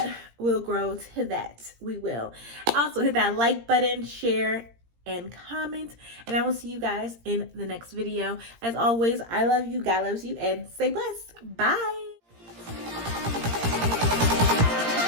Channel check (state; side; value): late; left; 17 ms